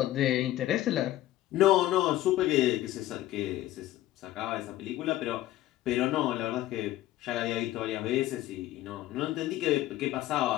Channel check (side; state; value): right; quieter; 14.8 dB